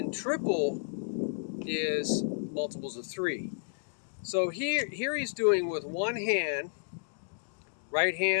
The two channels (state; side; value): silent; right; digital silence